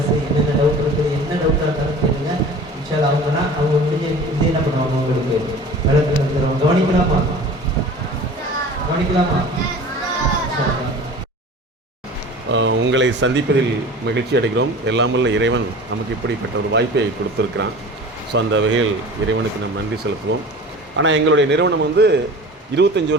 என்னென்ன டவுட் இருக்குது, என்ன டவுட்டாக இருந்தாலும் கேளுங்க. இன்ஷால் அவங்கன்னா அவங்க முடிஞ்ச இது என்ன பண்ணுவாங்க, உங்களுக்கு விளக்கு தருவாங்க. கவனிக்கலாமா? உங்களை சந்திப்பதில் மகிழ்ச்சி அடைகிறோம். எல்லாமல்ல இறைவன் நமக்கு இப்படிப்பட்ட ஒரு வாய்ப்பை கொடுத்துருக்கிறான். ஸோ அந்த வகையில் இறைவனுக்கு நம்ம நன்றி செலுத்துவோம். ஆனால் எங்களுடைய நிறுவனம் 25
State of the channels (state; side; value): normal; both; correlation 0.40